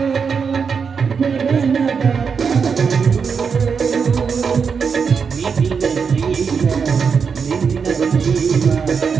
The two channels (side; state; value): left; quieter; 6.0 dB